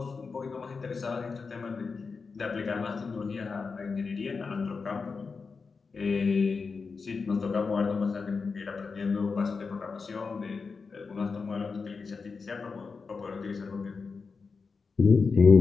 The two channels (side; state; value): right; quieter; 4.8 dB